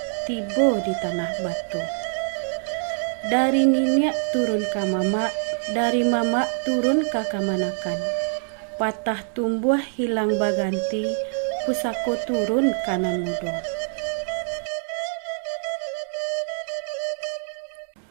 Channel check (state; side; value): silent; left; 62 dB below the other